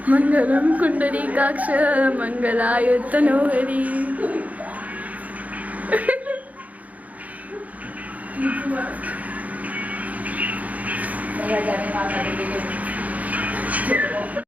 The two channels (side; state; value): left; late; 0.073 ms